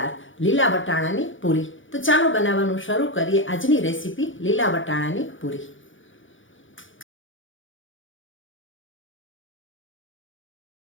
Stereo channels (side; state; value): right; late; 0.56 ms